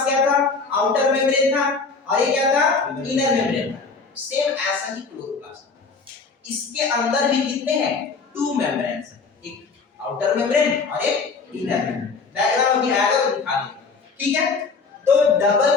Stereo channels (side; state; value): right; quieter; 4.6 dB